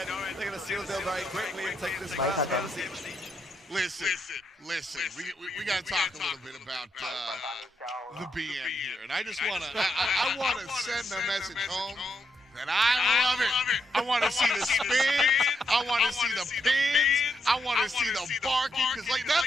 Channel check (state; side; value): normal; both; correlation 0.80